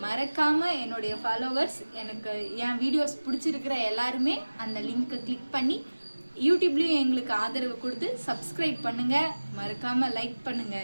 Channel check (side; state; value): both; inverted; correlation -1.00